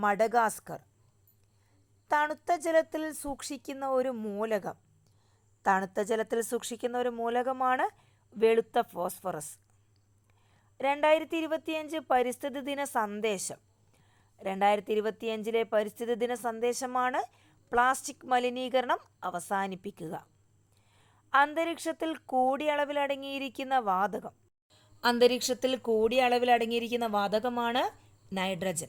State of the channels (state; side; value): identical; both; correlation 1.00